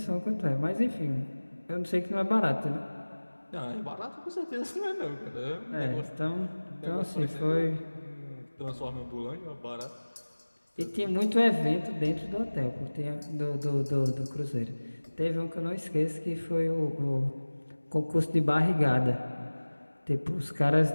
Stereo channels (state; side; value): inverted; both; correlation -1.00